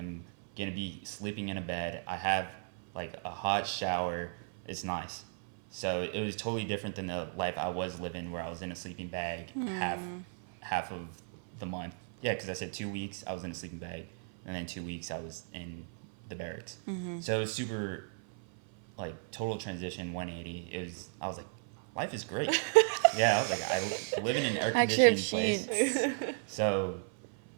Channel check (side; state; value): left; silent; 55 dB below the other